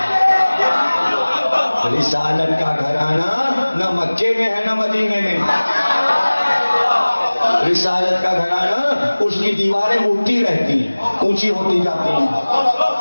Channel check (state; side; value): inverted; both; correlation -1.00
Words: رسالت کا گھرانہ نہ مکے میں ہے نہ مدینے میں. رسالت کا گھرانہ اس کی دیواریں اٹھتی رہتی ہیں، اونچی ہوتی جاتی ہیں،